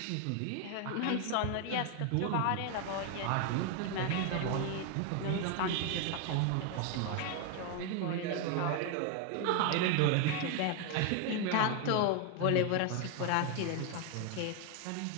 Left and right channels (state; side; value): different; both; correlation 0.01